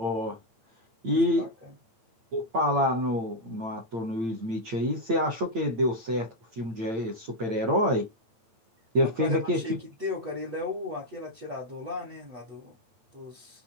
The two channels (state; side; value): late; left; 8.8 ms